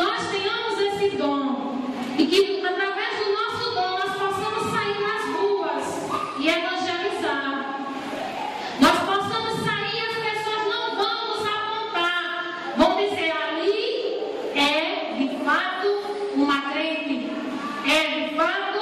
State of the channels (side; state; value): both; identical; correlation 1.00